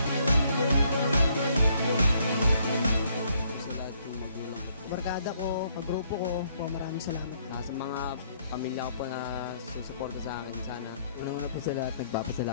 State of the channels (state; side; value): inverted; both; correlation -0.69